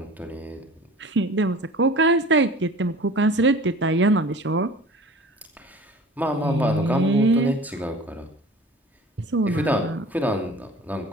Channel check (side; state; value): both; normal; correlation 0.42